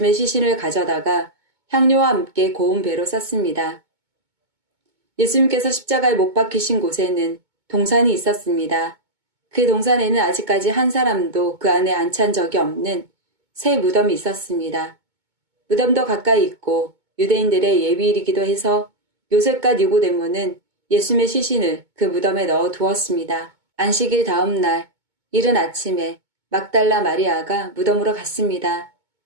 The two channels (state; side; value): late; left; 2.2 ms